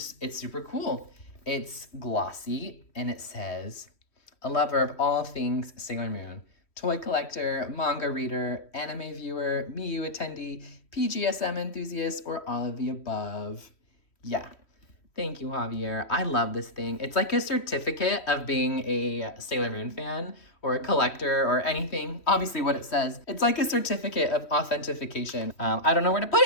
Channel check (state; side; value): late; right; 3.1 ms